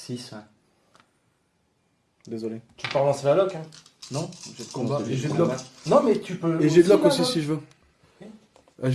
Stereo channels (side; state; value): both; identical; correlation 1.00